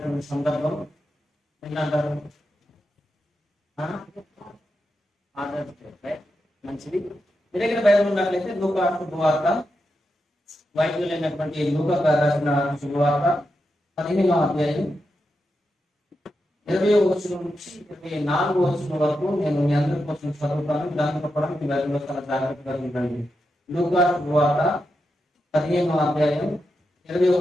సందర్భం ఏంటంటారు, మంచిది. మీ దగ్గర బైబిల్ ఉన్నట్లయితే లూకా శుభవార్త, వైద్యులైనటువంటి లూకా గారు రాసిన శుభవార్త 15వ అధ్యాయం 20వ వచనం నుంచి 24వ వచనం వరకు నేను మీ అందరి కోసం చదువుతాను. దాంతో కూడా మీ బైబిల్లో చాలా జాగ్రత్తగా ఉండండి. లూకా శుభవార్త 15వ అధ్యాయం 20వ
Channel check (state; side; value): normal; both; correlation 0.87